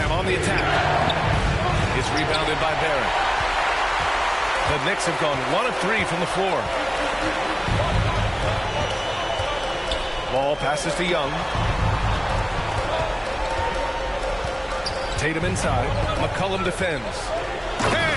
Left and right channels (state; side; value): identical; both; correlation 1.00